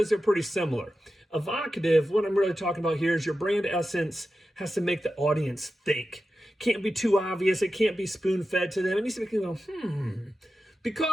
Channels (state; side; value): normal; both; correlation 0.92